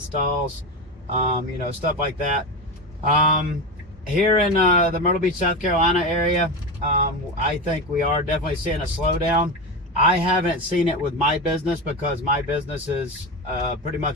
stuff like that. Here in the Myrtle Beach, South Carolina area, I think we are definitely seeing a slowdown. I haven't seen it with my business because my business is pretty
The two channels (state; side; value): normal; both; correlation 0.20